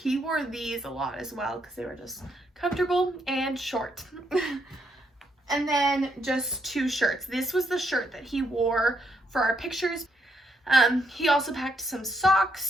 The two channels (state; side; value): normal; both; correlation 0.76